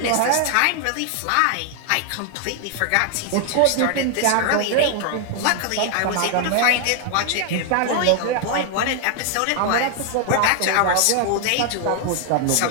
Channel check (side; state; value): both; different; correlation 0.00